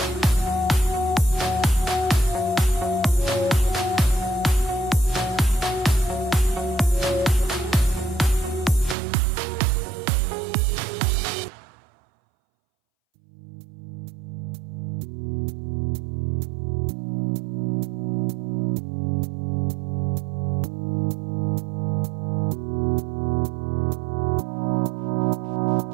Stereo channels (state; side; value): drops out; left; at 9.0 s